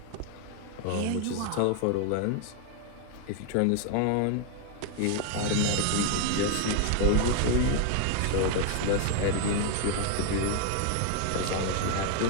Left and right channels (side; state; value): both; different; correlation 0.00